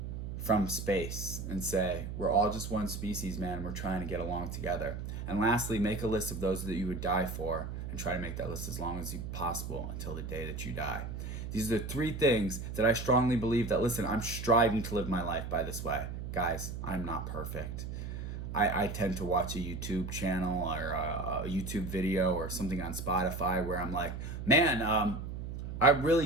from space and say, we're all just one species, man, and we're trying to get along together. And lastly, make a list of those that you would die for and try to make that list as long as possible until the day that you die. These are the 3 things that I strongly believe that, listen, I'm striving to live my life by this way. Guys, I'm not perfect. I tend to watch a YouTube channel or a YouTube video or something on Spotify where I'm like, man, I really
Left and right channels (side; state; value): right; noise; hum, 6 dB below the sound